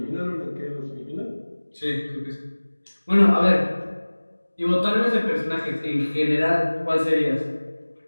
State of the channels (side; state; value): both; inverted; correlation -1.00